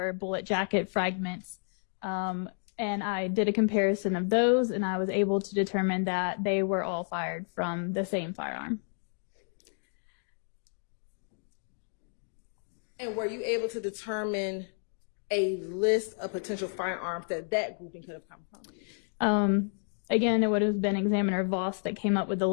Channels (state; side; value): silent; right; 57 dB below the other